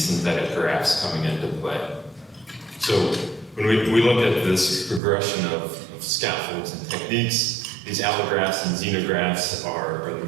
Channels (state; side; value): drops out; left; at 5.0 s